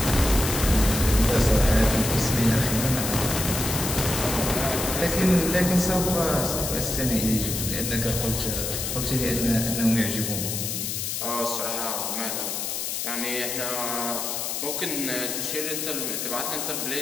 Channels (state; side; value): noise; left; hiss, 3 dB below the sound